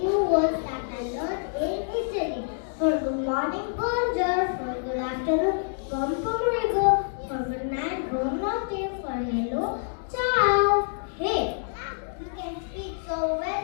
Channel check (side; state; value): right; silent; digital silence